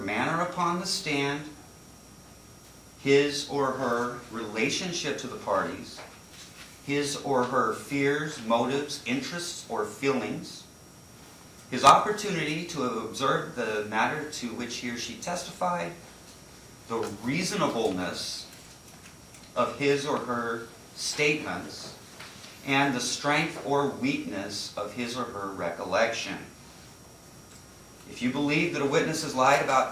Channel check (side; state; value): both; identical; correlation 1.00